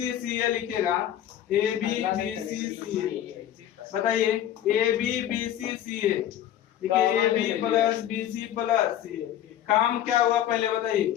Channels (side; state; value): right; quieter; 11.4 dB